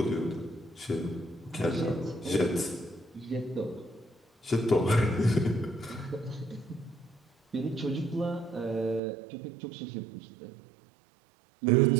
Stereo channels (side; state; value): left; drops out; at 9.0 s